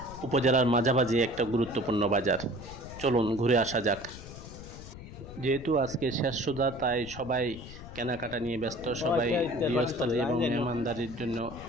উপজেলার মাঝামাঝি একটা গুরুত্বপূর্ণ বাজার। চলুন ঘুরে আসা যাক। যেহেতু আজকে শেষ সুধা, তাই সবাই কেনাকাটা নিয়ে ব্যস্ত। সবাই গৃহস্থালী এবং মেহমানদারির জন্য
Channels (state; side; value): noise; left; rumble, 14 dB below the sound